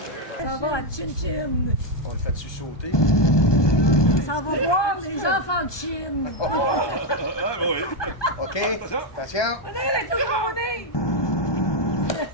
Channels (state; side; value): late; right; 1.2 ms